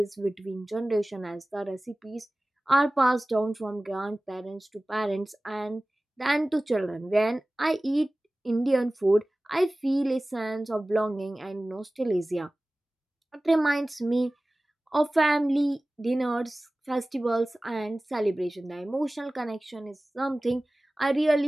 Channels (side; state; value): both; normal; correlation 0.98